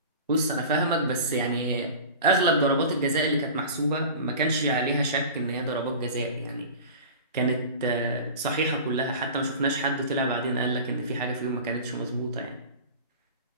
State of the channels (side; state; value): both; inverted; correlation -0.36